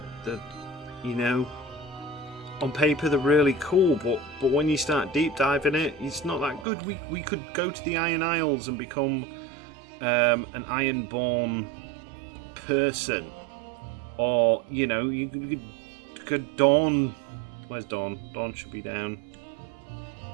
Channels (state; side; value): drops out; left; at 6.7 s